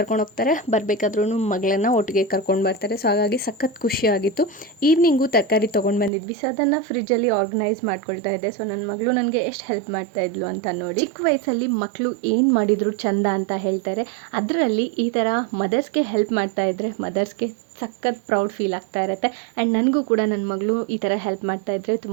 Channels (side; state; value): left; drops out; at 6.1 s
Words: ಹೋಗ್ತಾರೆ, ಬರಬೇಕಾದ್ರೂ ಮಗಳನ್ನು ಒಟ್ಟಿಗೆ ಕರ್ಕೊಂಡು ಬರ್ತಾರೆ. ಸೊ ಹಾಗಾಗಿ ಸಖತ್ ಖುಷಿಯಾಗಿತ್ತು. ಈವ್ನಿಂಗು ತರಕಾರಿ ತೊಗೊಂಡು ಬಂದಿದ್ವಿ. ಸೊ ಅದನ್ನು ಫ್ರಿಜ್ಜಲ್ಲಿ ಆರ್ಗನೈಸ್ ಮಾಡ್ಕೊಳ್ತಾ ಇದ್ದೆ. ಸೊ ನನ್ನ ಮಗಳು ನನಗೆ ಎಷ್ಟು ಹೆಲ್ಪ್ ಮಾಡ್ತಾ ಇದ್ಲು ಅಂತ ನೋಡಿ. ಚಿಕ್ಕ ವಯಸ್ಸಲ್ಲಿ ಮಕ್ಕಳು ಏನು ಮಾಡಿದ್ರು ಚಂದ ಅಂತ ಹೇಳ್ತಾರೆ. ಅದರಲ್ಲಿ ಈ ಥರ ಮದರ್ಸ್ಗೆ ಹೆಲ್ಪ್ ಮಾಡ್ತಾ ಇದ್ದರೆ ಮದರ್ಸ್ಗೆ ಸಖತ್ ಪ್ರೌಡ್ ಫೀಲ್ ಆಗ್ತಾ ಇರುತ್ತೆ. ಆ್ಯಂಡ್ ನನಗೂ ಕೂಡ ನನ್ನ ಮಗಳು ಈ ಥರ ಹೆಲ್ಪ್ ಮಾಡ್ತಾ ಇದ್ದರೆ